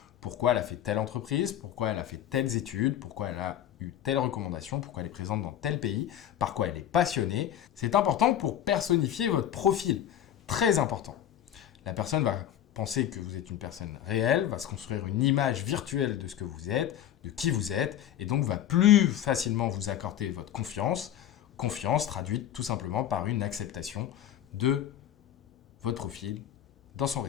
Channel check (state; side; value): quieter; right; 10.9 dB